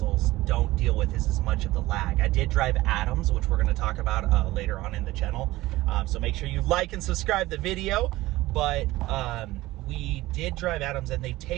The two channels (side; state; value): left; quieter; 18.0 dB